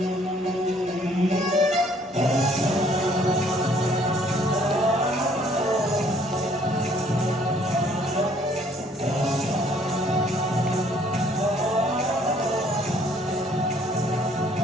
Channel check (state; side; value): normal; both; correlation 0.61